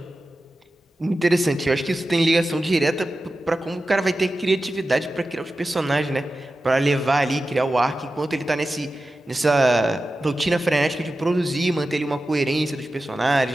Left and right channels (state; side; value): normal; both; correlation 0.93